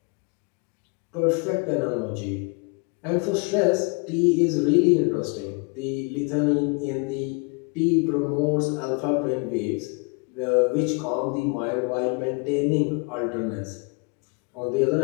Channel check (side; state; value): right; quieter; 32.9 dB